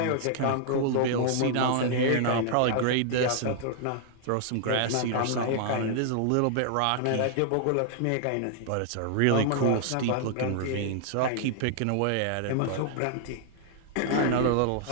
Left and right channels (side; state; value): both; different; correlation 0.00